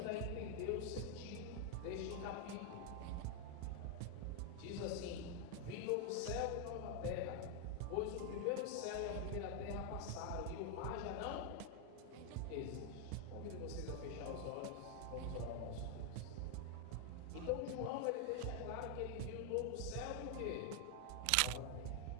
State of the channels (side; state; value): both; different; correlation 0.00